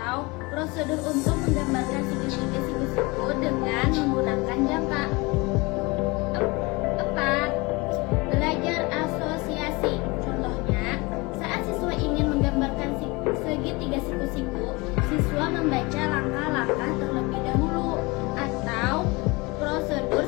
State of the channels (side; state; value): right; quieter; 25.2 dB